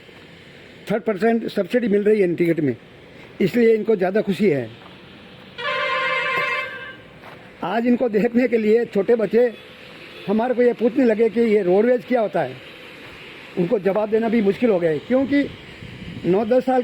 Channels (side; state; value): both; identical; correlation 1.00